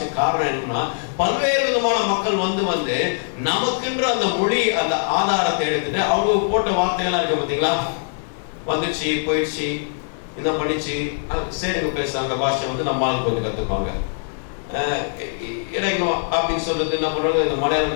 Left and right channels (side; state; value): right; silent; 58 dB below the other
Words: காரணம் என்னன்னா, பல்வேறு விதமான மக்கள் வந்து நமக்குன்ற அந்த மொழி அந்த ஆதாரத்தை எடுத்துட்டு அவங்க போட்ட வார்த்தைகள்லாம் இருக்கு பாத்தீங்களா, வந்துச்சு போயிடுச்சு இந்த பண்ணிச்சு சரிங்க பேச அந்த பாஷை வந்து நம்மளால கொஞ்சம் கத்துப்பாங்க. எனக்கு அப்படின்னு சொல்றது என்ன பண்றாங்க, இந்த